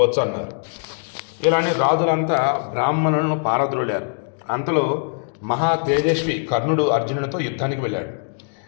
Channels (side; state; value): right; silent; digital silence